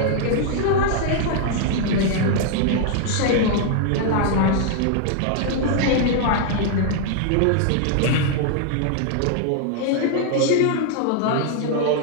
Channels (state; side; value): different; both; correlation 0.00